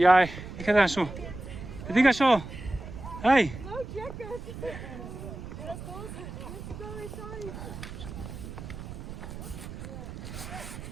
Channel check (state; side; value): noise; right; rumble, 10 dB below the sound